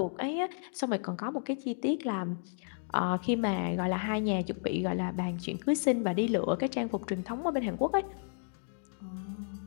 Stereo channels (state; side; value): silent; right; digital silence